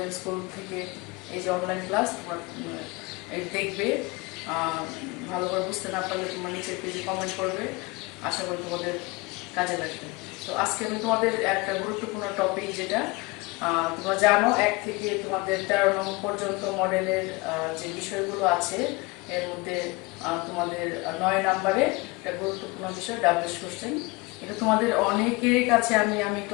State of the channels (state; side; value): quieter; right; 24.5 dB